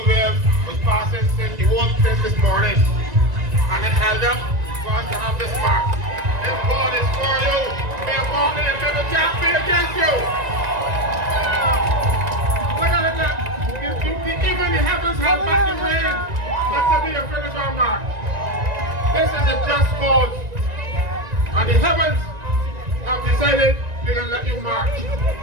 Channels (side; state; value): left; late; 1.9 ms